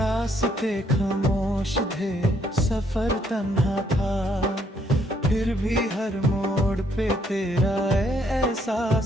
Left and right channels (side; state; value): both; normal; correlation 0.70